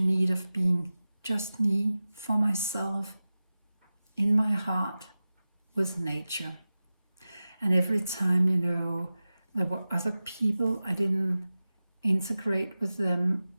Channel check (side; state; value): both; inverted; correlation -0.96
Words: of being just me, for myself, in my heart, with nature. And every time, there were other people, I didn't integrate with them,